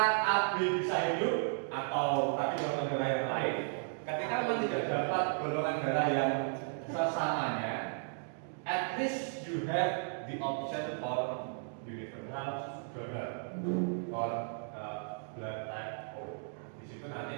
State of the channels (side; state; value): left; silent; digital silence